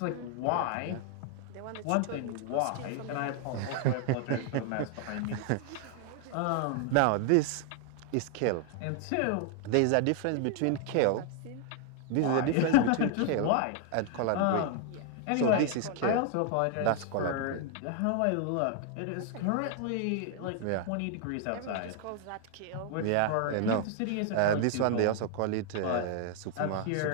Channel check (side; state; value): both; different; correlation 0.00